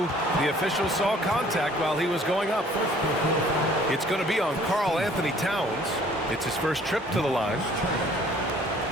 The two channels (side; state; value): both; normal; correlation 0.56